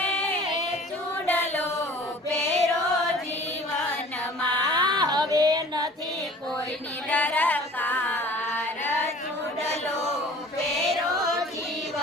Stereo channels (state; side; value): normal; both; correlation 0.47